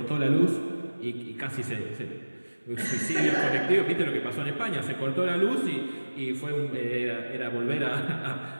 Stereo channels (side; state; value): both; inverted; correlation -1.00